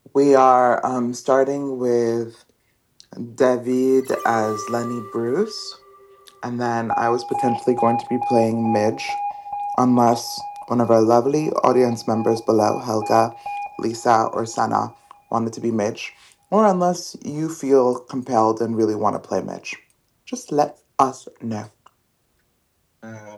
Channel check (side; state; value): both; identical; correlation 1.00